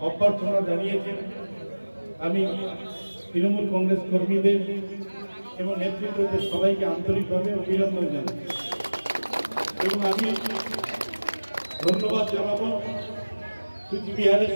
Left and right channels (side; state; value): both; inverted; correlation -1.00